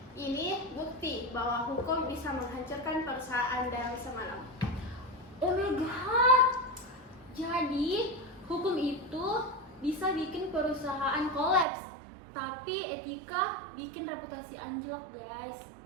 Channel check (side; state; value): left; drops out; at 11.7 s